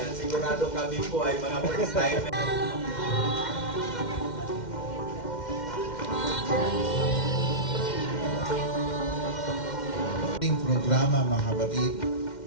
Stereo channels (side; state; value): right; late; 2.1 ms